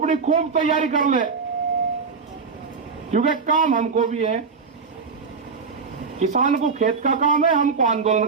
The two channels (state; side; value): quieter; left; 5.2 dB